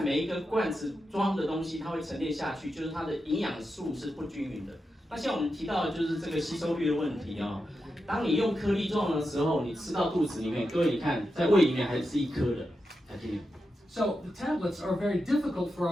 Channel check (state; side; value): normal; both; correlation 0.88